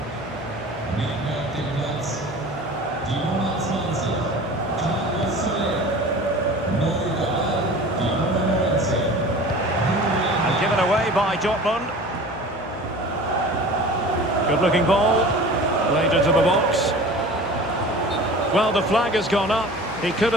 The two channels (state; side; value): noise; left; hum, 15 dB below the sound